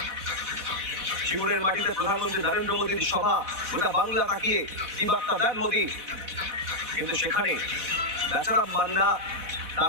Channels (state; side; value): late; left; 4.1 ms